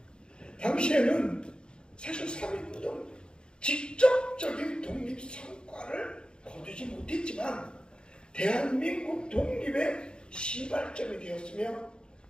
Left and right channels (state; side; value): late; right; 0.051 ms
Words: 당시에는 사실 3.1운동 직접적인 독립 성과를 거두지 못했지만 대한민국 독립의 시발점이 되었으며